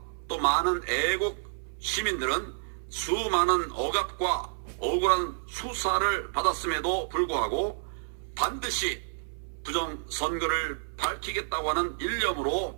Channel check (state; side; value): silent; left; 58 dB below the other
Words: 또 많은 애국 시민들은 수많은 억압과 억울한 수사를 받았음에도 불구하고 반드시 부정선거를 밝히겠다고 하는 일념으로